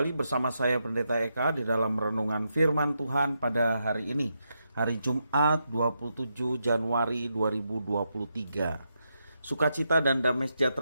bersama saya Pendeta Eka di dalam renungan firman Tuhan pada hari ini, hari Jumat 27 Januari 2023. Sukacita dan damai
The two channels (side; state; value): both; inverted; correlation -0.83